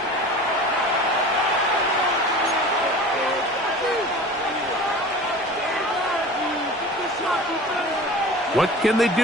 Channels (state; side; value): normal; both; correlation 0.38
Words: What can they